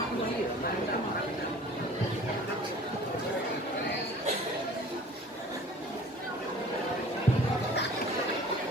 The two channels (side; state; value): both; normal; correlation 0.46